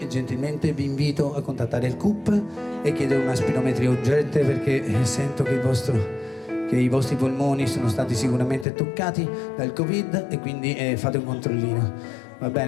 gentilmente vi invito a contattare il CUP e chiedere una spirometria urgente perché sento che i vostri polmoni sono stati sicuramente toccati dal Covid e quindi fate un controllino. Va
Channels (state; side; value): drops out; right; at 8.7 s